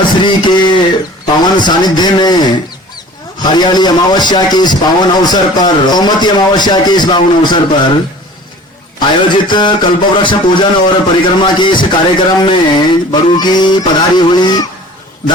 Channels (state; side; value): normal; both; correlation 0.45